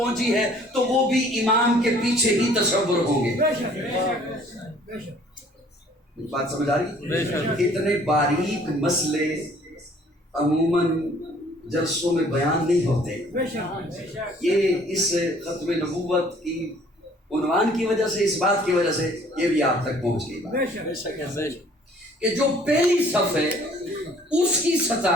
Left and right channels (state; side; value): normal; both; correlation 0.56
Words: ہے تو وہ بھی امام کے پیچھے ہی تصور ہوں گے۔ بات سمجھ آ رہی؟ اتنے باریک مسئلے عموماً جلسوں میں بیان نہیں ہوتے، یہ اس ختم نبوت کی عنوان کی وجہ سے، اس بات کی وجہ سے یہ بھی آپ تک پہنچ گئی کہ جو پہلی صف ہے اس کی